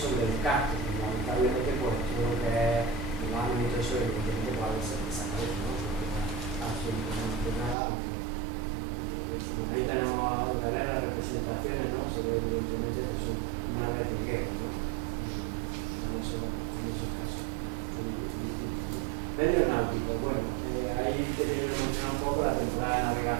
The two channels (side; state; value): left; drops out; at 7.8 s